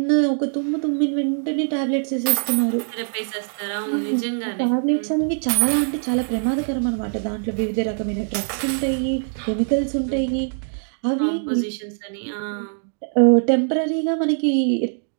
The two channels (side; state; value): left; silent; digital silence